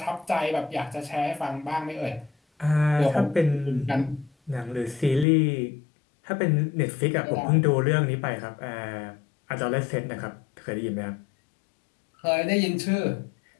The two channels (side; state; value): right; drops out; at 5.2 s